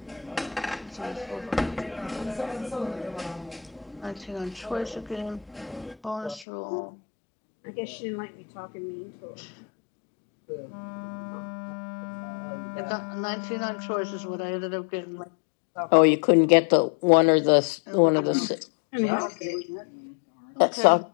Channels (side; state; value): right; drops out; at 6.5 s